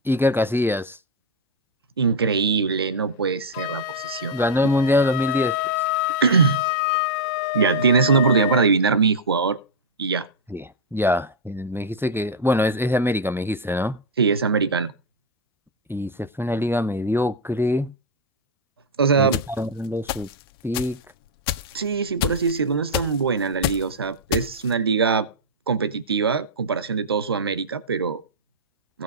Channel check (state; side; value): normal; both; correlation -0.03